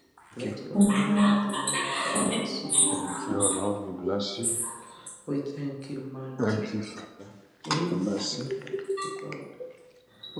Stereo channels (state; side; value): identical; both; correlation 1.00